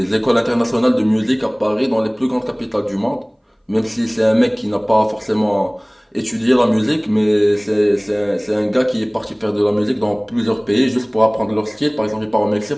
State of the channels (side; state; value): both; identical; correlation 1.00